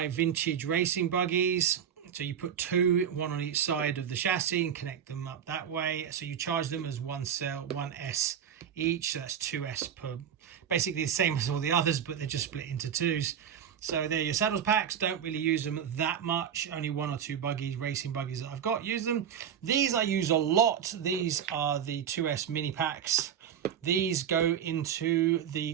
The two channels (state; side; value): quieter; left; 8.6 dB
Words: vintage racing buggies. So you put two, one on each side of the chassis and connect them up that way. So you charge them as one cell, 1S each, so that's 2S per, basically the same as all the others, but they're just split into twos. So they're your saddles packs. Don't really use them that much. Only one or two buggies, racing buggies that I've got, use them. These I use a lot. These are the 2S mini packs. These go into the